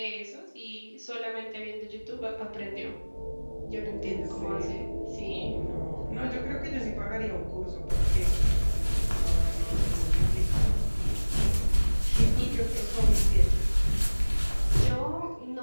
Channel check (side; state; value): both; inverted; correlation -1.00